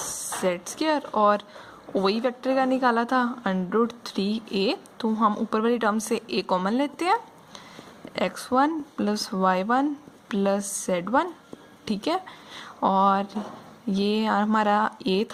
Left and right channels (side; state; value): both; identical; correlation 1.00